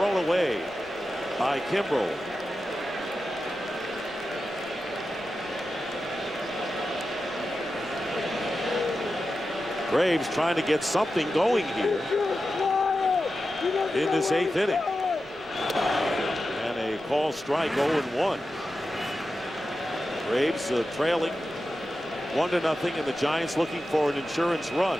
away by Kimbrel. Braves trying to get something going here in this 8th inning. And a call strike, 0-1. Braves trailing 1-0, and the Giants looking for an insurance run.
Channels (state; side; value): noise; left; rumble, 29 dB below the sound